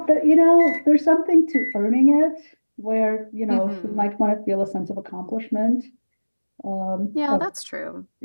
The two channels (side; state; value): both; inverted; correlation -1.00